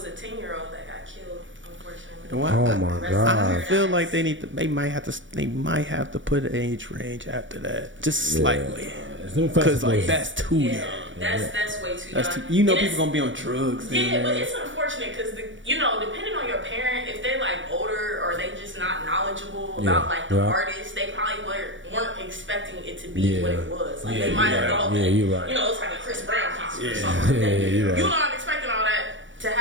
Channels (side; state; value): left; late; 0.56 ms